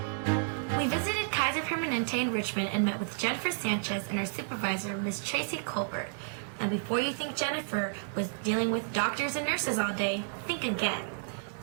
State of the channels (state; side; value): silent; left; digital silence